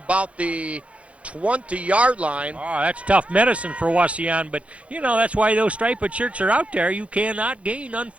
the 20-yard line. Oh, that's tough medicine for Wauseon, but, you know, that's why those striped shirts are out there. You cannot gain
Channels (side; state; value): left; late; 0.063 ms